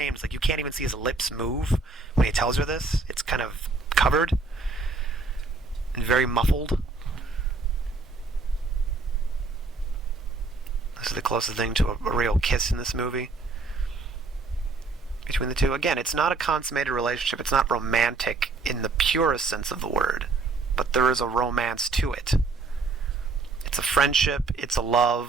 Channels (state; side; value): quieter; left; 3.9 dB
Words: it's like you can't even see his lips move when he tells her this. It's kind of covered and very muffled. This is the closest thing to a real kiss in this movie between the two. Again, it's not a consummated relationship. It's not romantic in the purest sense of the word, but there is a romance to it. It's a friendship, it's a